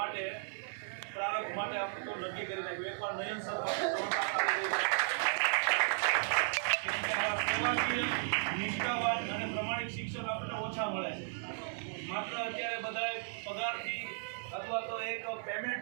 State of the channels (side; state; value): left; silent; 54 dB below the other